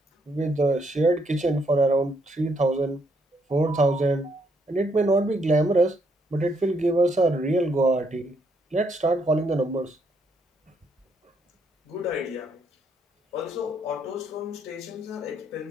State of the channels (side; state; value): both; normal; correlation 0.73